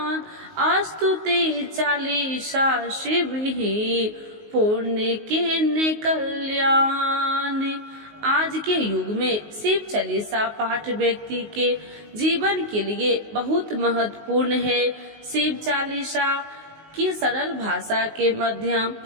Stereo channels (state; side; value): late; left; 19 ms